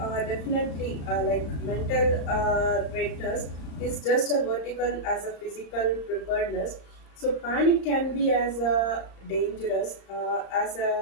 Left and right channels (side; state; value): right; late; 35 ms